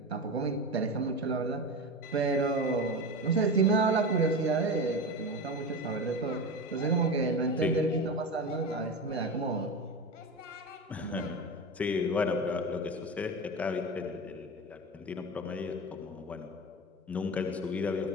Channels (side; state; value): both; normal; correlation 0.24